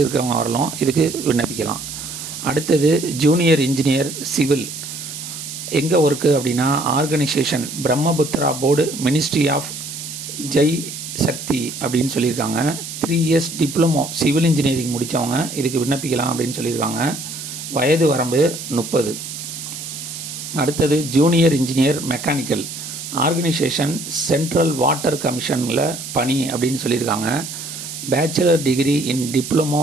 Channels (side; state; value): right; noise; hiss, 9 dB below the sound